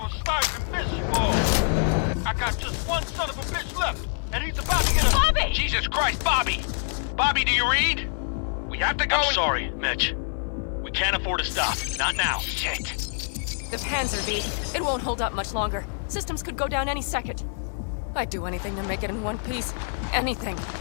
starting to miss you all. I got just one son of a bitch left, and he's about to get a... Bobby! Jesus Christ, Bobby! Bobby, do you read? We have to go. I'm sorry, Mitch. We can't afford to stop. Not now. Shit. The Panzer V. It won't hold up much longer. Systems could go down any second. I'd do anything to make it in one piece. Anything.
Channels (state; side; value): silent; right; digital silence